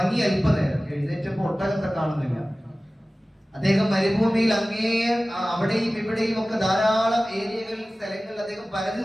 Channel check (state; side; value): normal; both; correlation 0.97